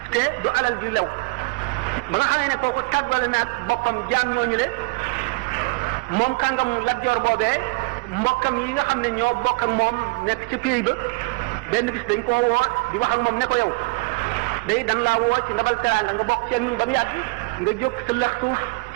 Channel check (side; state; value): left; quieter; 27.3 dB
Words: te du alal ju lew ba nga xamee ne kooku tàggale naag boppam jaam ñooñu le moom kàngamu Lat Joor boobee mbokkam yi nga xam ne ñoo bokk ak moom nekk ca pays ba benn bis dañ koo woo di wax ak moom ne ko yow day dan laa woo ci ndabal teraanga nga bokk ci ñun ba mu yàgg nga jóg sa lëx suuf